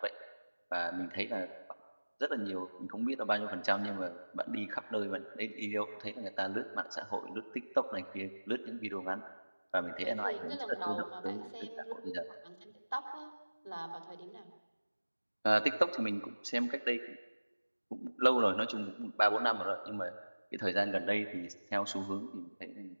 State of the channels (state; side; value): inverted; both; correlation -1.00